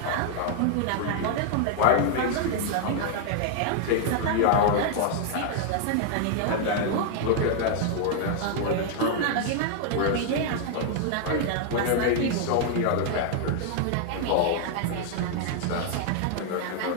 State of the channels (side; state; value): both; different; correlation 0.00